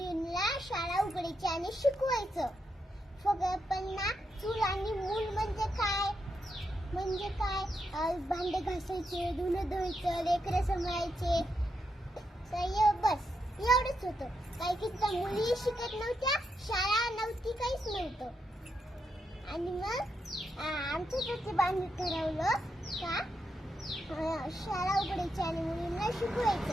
शाळा उघडायची आणि शिकवायचं. पण ना चूल आणि मूल म्हणजे काय भांडे घासायचे, धुणं धुवायचं, लेकरं सांभाळायचे, बस एवढंच होतं. काही मुली शिकत नव्हत्या, शाळा नव्हती, काहीच नव्हतं. आणि मग आमच्या ज्योतिबांनी ठरवलं का शाळा उघडायची आणि मुलींना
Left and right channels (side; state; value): both; normal; correlation 0.83